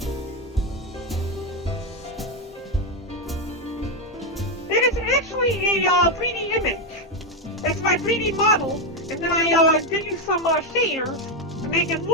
It is actually a 3D image. It's my 3D model, and then I did use some shaders to make it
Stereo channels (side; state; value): both; normal; correlation 0.06